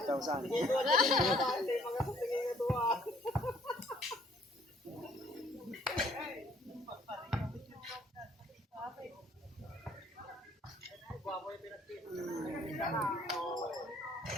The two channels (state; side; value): normal; both; correlation 0.61